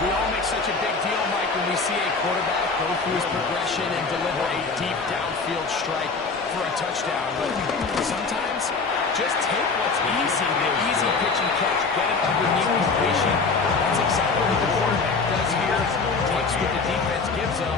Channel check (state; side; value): quieter; right; 4.4 dB